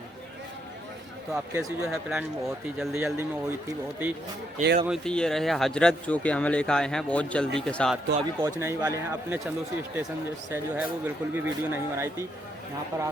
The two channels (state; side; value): normal; both; correlation 0.76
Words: तो आप कैसी जो है प्लान बहुत ही जल्दी में हुई थी, बहुत ही एकदम हुई थी। ये रहे हजरत जो कि हमें लेकर आए हैं बहुत जल्दी के साथ। तो अभी पहुंचने ही वाले हैं अपने चंदोसी स्टेशन से। जो है वो बिल्कुल भी वीडियो नहीं बनाई थी, यहाँ पर